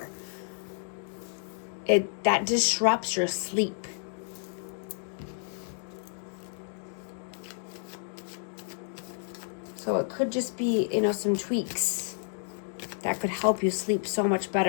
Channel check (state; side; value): silent; right; digital silence